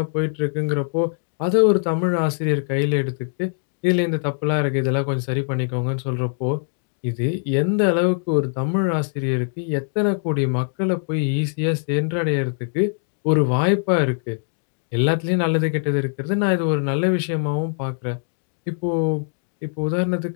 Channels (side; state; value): right; silent; digital silence